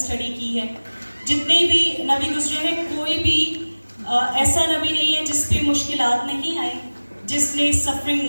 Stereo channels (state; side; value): inverted; both; correlation -1.00